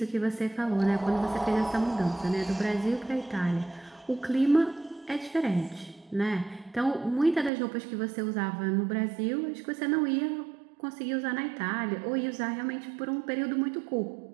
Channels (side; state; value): left; drops out; at 7.5 s